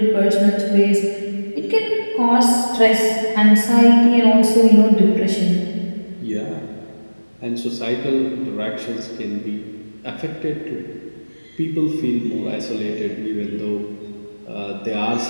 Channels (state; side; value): inverted; both; correlation -1.00